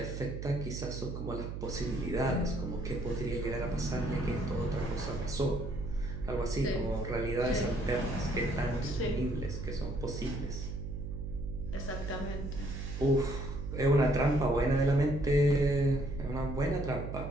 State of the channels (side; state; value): right; noise; hum, 6 dB below the sound